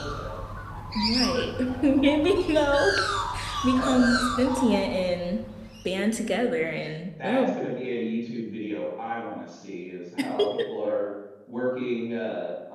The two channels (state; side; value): identical; both; correlation 1.00